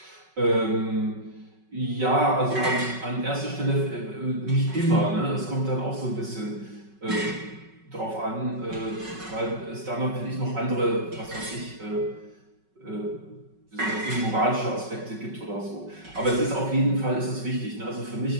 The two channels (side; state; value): left; late; 5.3 ms